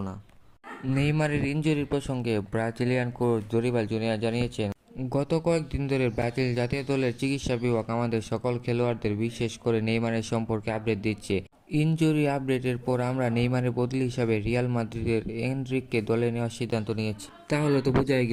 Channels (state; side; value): identical; both; correlation 1.00